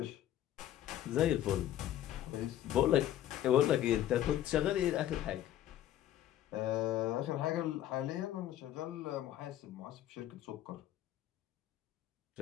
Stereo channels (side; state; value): right; quieter; 12.2 dB